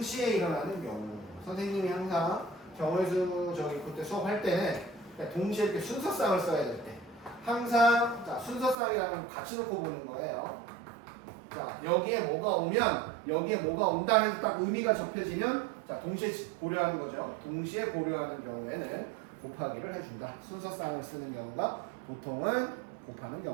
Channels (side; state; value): left; drops out; at 8.8 s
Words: 일어나는 경우. 선생님이 항상 경우의 수 그때 수업할 때는 동시에 이렇게 순서쌍을 써야 될 때. 항상 자, 순서쌍이라면 같이 놓고 보는 거예요. 자, 여기에 뭐가 오면 여기에 뭐가 온다 해서 딱 의미가 접혀지면 자, 동시에 고려하는 거죠. 동시에 고려하는 경우에는 곱하기를 해준다. 순서쌍을 쓰는 경우가 보통은 곱하는